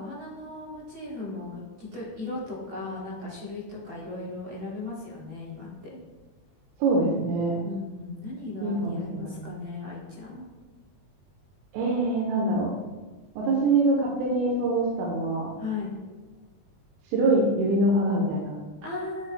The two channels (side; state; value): left; late; 21 ms